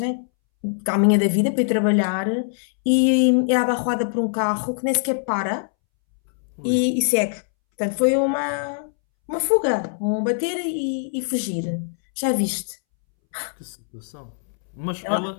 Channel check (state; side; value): silent; right; 64 dB below the other